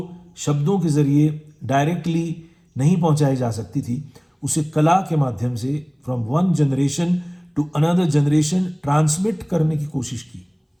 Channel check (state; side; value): identical; both; correlation 1.00